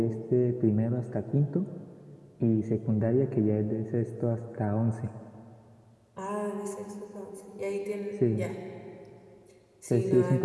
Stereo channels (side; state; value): both; identical; correlation 1.00